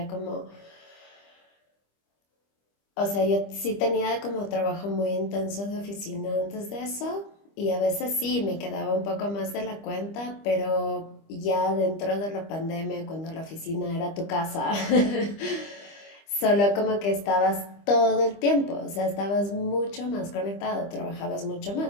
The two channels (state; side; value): late; right; 25 ms